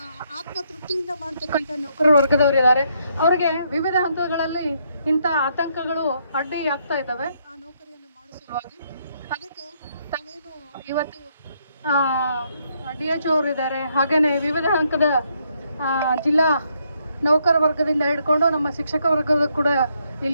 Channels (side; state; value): both; inverted; correlation -0.74